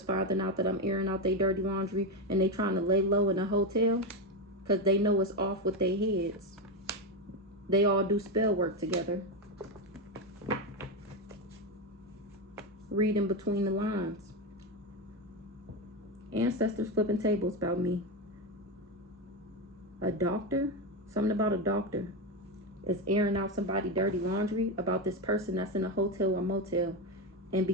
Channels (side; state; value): both; normal; correlation 0.11